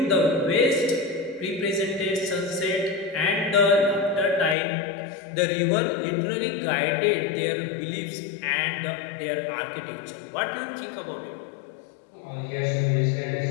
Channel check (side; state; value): right; drops out; at 4.5 s